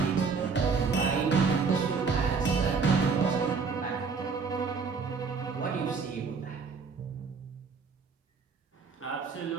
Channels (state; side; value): quieter; left; 5.2 dB